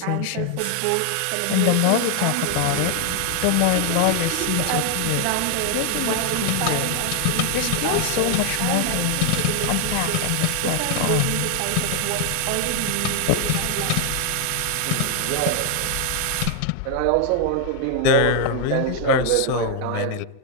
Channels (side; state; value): both; different; correlation 0.00